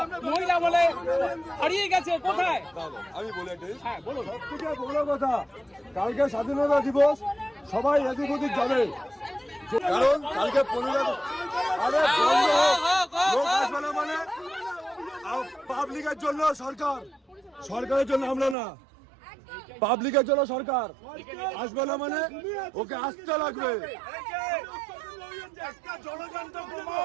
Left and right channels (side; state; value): left; drops out; at 18.6 s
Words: মহিলা বলে হারিয়ে গেছে কোথায়? আমি বলে দিই, হ্যাঁ বলুন। সবথেকে বড় কথা, কালকে স্বাধীনতা দিবস সবাই এদিক ওদিক যাবে, কারণ কালকে 15 আরে লোক আসবে না মানে পাবলিকের জন্য সরকার, সরকারের জন্য আমরা না, পাবলিকের জন্য সরকার আসবে না মানে ওকে আসতে লাগবে।